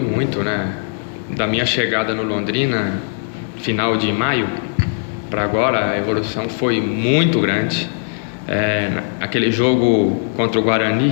né? Da minha chegada no Londrina, final de maio, para agora a evolução foi muito grande. Aquele jogo contra o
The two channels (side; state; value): right; silent; 62 dB below the other